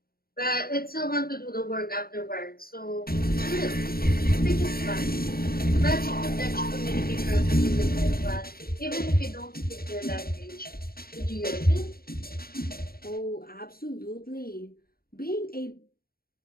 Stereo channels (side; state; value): right; late; 0.44 ms